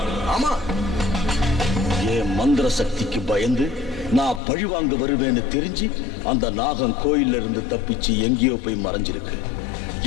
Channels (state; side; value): drops out; right; at 4.4 s